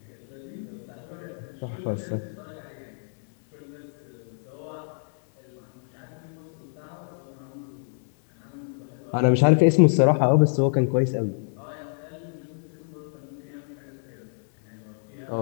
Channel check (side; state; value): right; silent; digital silence